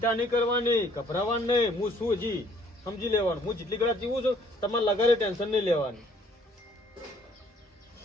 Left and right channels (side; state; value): both; normal; correlation 0.61